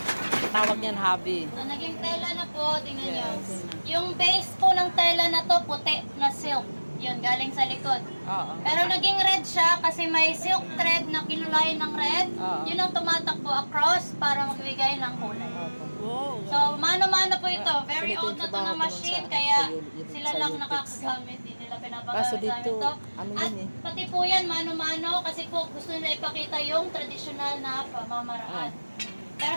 Tawag niyan hobby. So, naging tela na po, tingnan nyo. Yes. Yung base po ng tela na to, puti na silk. Yun, galing sa likod. Oo. Pero naging red siya kasi may silk thread na kinulayan ng red. Oo. Yun ang tumatakbo across para magbigay ng kulay. Wow. So, mano-mano po ito. Very Ganito old yung na to trabaho na ko nun machine, sa- kaya sa sila sa lang Utex. nakakagamit. Hindi nila Kaso pinapagamit dito, ito. ano At yun eh. pati po yan, mano-mano, kasi po gusto nila ipakita yung traditional na pamamaraan. Pero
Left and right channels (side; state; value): both; inverted; correlation -1.00